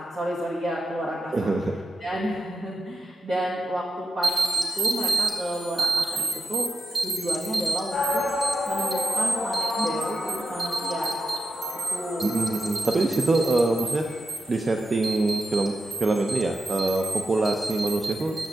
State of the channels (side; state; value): both; normal; correlation 0.88